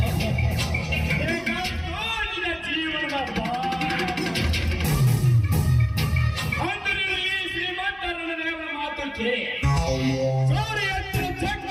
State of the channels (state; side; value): identical; both; correlation 1.00